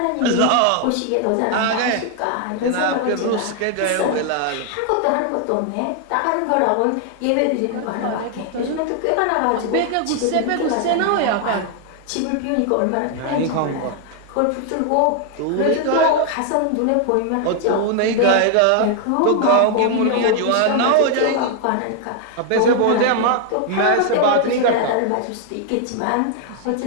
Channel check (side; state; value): both; different; correlation 0.00